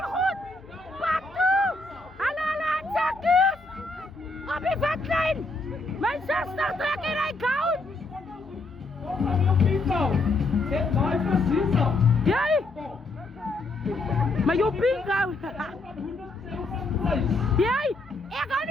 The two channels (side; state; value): right; quieter; 3.1 dB